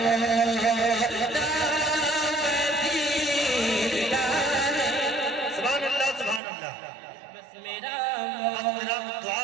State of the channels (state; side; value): drops out; left; at 6.4 s